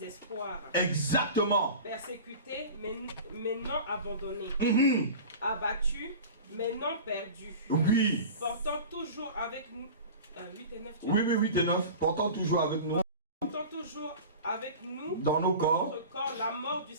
Exactement. Persécutés, mais non abandonnés. Abattus, mais non perdus. Oui. Portant toujours avec nous... 8 et 9. Oui, 8 et 9. Portant toujours avec nous. Portant toujours avec nous dans nos corps, notre corps la mort du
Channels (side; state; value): both; inverted; correlation -0.35